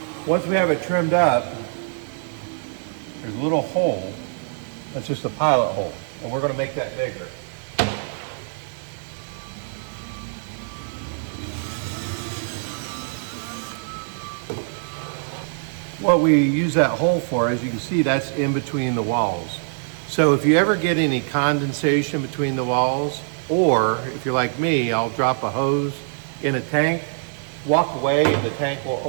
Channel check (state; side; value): silent; left; digital silence